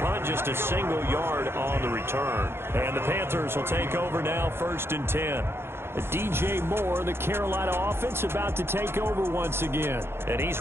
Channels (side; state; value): left; late; 0.12 ms